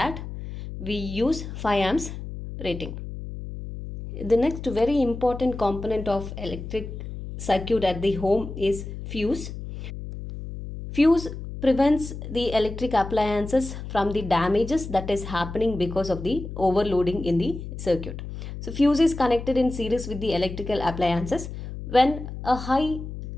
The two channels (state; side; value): noise; left; hum, 9 dB below the sound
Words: we use 5 amps rating. The next very important component of electric circuit at the home is fuse. Fuse prevents the electric appliances from the damages that is happening because of the overloading in the circuit. So fuse is connected in series with the electrical appliances. When a high